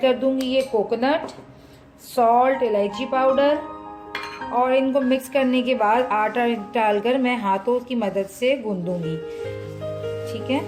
कर दूंगी ये कोकोनट, सॉल्ट, इलायची पाउडर, और इनको मिक्स करने के बाद आटा डालकर मैं हाथों की मदद से गूंदूंगी, ठीक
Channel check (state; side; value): identical; both; correlation 1.00